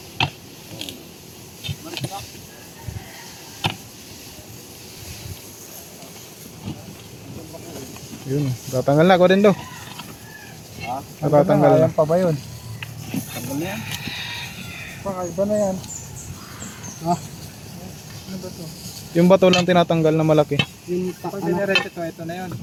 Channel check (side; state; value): both; identical; correlation 1.00